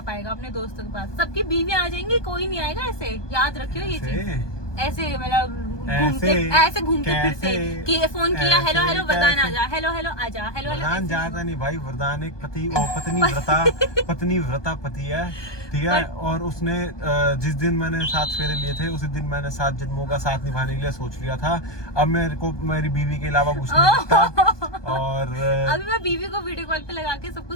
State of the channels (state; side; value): late; right; 1.2 ms